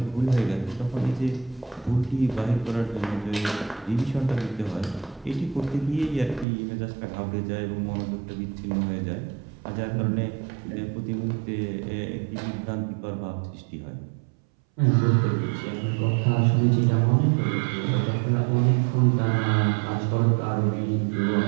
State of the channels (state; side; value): drops out; left; at 6.5 s